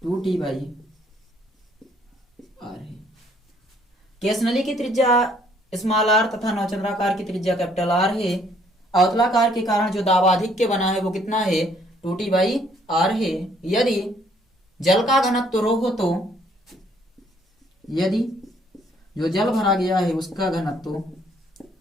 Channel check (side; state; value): both; normal; correlation 0.64